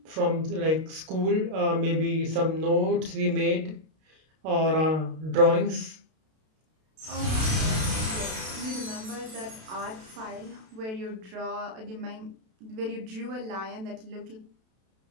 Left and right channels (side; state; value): left; late; 32 ms